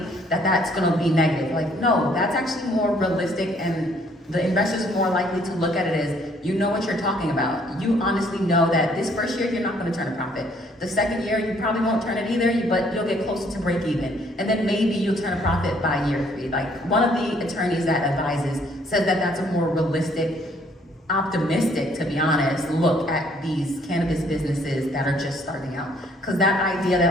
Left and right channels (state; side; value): normal; both; correlation 0.64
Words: that's going to be negative. Like, no, that's actually more realistic, and the investors are more likely to look at it as, you know what you're talking about. You honestly know that this first year, you're not going to turn a profit. The second year, you probably won't turn it either, but you'll get closer to break even. And then maybe you'll turn a profit by year 3. Like, one of the attorneys that advises says that that's a more realistic, optimistic, to be honest, look at these cannabis businesses that are just starting out. Because that idea